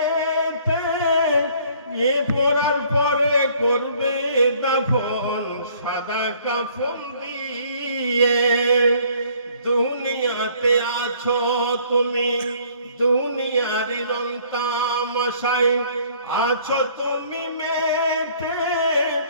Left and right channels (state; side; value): inverted; both; correlation -0.58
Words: এ পড়ার পরে করবে দাফন সাদা কাফন দিয়ে। দুনিয়াতে আছো তুমি, দুনিয়ার রং তামাশায় আছো তুমি মেতে,